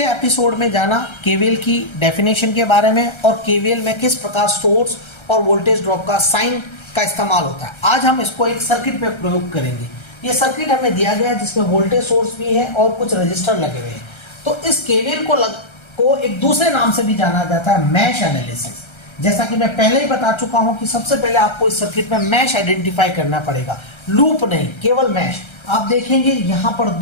एपिसोड में जाना केवीएल की डेफिनेशन के बारे में और केवीएल में किस प्रकार सोर्स और वोल्टेज ड्रॉप का साइन का इस्तेमाल होता है। आज हम इसको एक सर्किट में प्रयोग करेंगे। ये सर्किट हमें दिया गया है जिसमें वोल्टेज सोर्स भी है और कुछ रजिस्टर लगे हुए हैं। तो इस केवीएल को एक दूसरे नाम से भी जाना जाता है मैश एनालिसिस। जैसा कि मैं पहले ही बता चुका हूं कि सबसे पहले आपको इस सर्किट में मैश आइडेंटिफाई करना पड़ेगा, लूप नहीं, केवल मैश। आप देखेंगे यहां पर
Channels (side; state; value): right; late; 1.3 ms